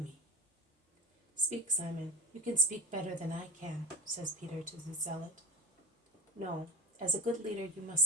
Speak, Simon. You can speak better than I can, says Peter to the zealot. No, as a good leader you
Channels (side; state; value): both; normal; correlation 0.25